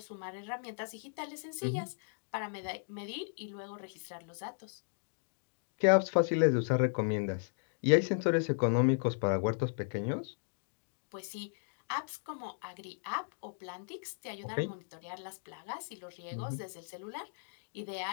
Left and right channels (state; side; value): silent; right; digital silence